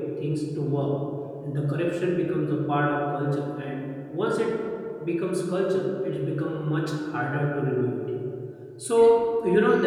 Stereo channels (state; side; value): identical; both; correlation 1.00